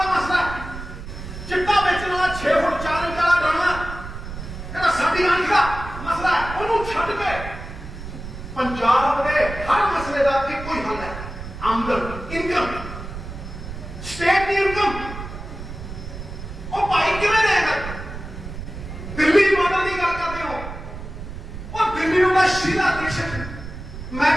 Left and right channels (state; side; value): noise; right; rumble, 10 dB below the sound